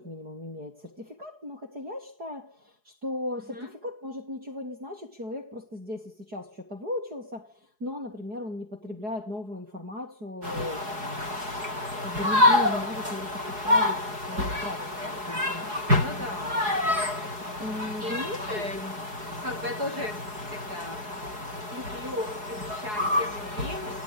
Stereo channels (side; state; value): left; late; 4.8 ms